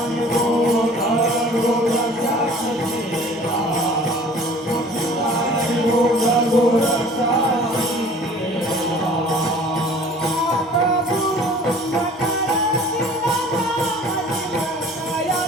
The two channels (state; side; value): normal; both; correlation 0.48